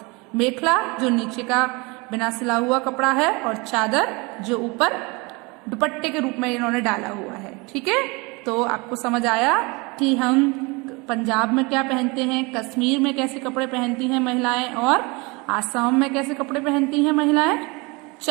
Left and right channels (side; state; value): left; quieter; 27.0 dB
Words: मेखला जो नीचे का बिना सिला हुआ कपड़ा है, और चादर जो ऊपर दुपट्टे के रूप में इन्होंने डाला हुआ है। ठीक है, तो आपको समझ आया कि हम पंजाब में क्या पहनते हैं, कश्मीर में कैसे कपड़े पहनती हैं महिलाएं, और आसाम में कैसे कपड़े पहनती हैं महिलाएं।